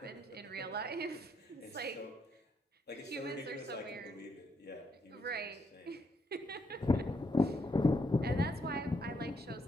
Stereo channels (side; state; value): both; normal; correlation 0.76